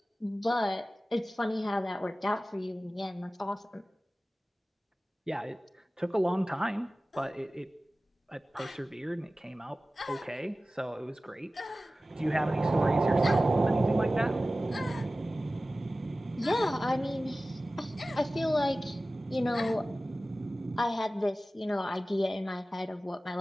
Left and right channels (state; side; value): normal; both; correlation 0.96